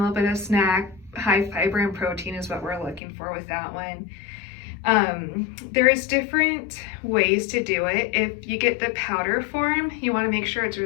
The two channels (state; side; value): drops out; right; at 3.0 s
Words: bit of snack. High fiber and protein is what we're looking for with that one. There's different ways to do it. If you get the powder form, you want to make sure it's